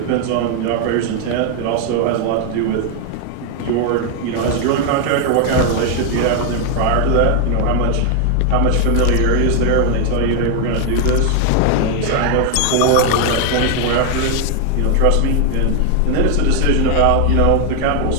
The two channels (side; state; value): both; different; correlation 0.00